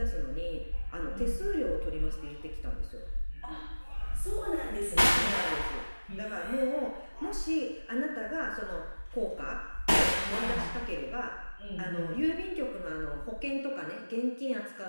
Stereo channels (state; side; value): inverted; both; correlation -1.00